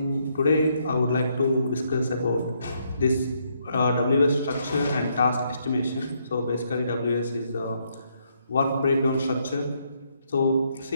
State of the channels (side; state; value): both; inverted; correlation -0.74